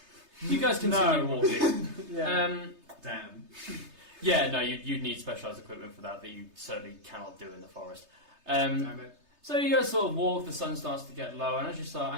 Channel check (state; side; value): late; left; 3.3 ms